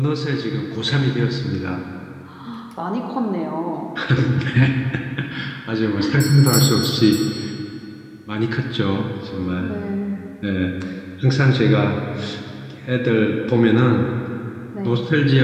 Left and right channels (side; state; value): both; identical; correlation 1.00